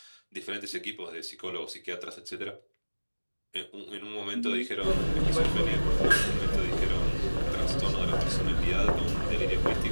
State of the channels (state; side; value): inverted; both; correlation -1.00